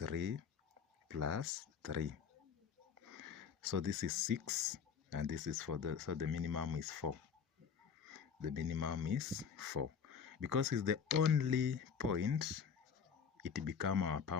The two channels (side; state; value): right; quieter; 6.7 dB